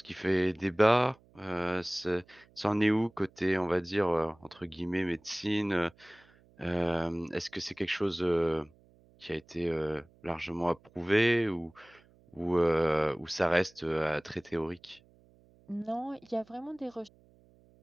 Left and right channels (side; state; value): right; noise; hum, 29 dB below the sound